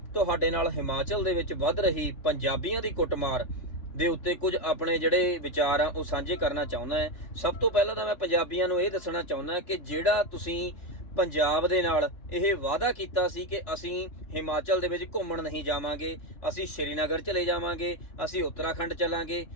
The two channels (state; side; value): late; right; 3.6 ms